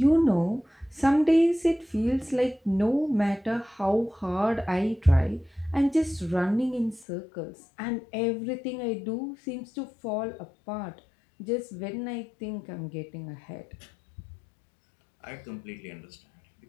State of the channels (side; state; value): right; drops out; at 7.1 s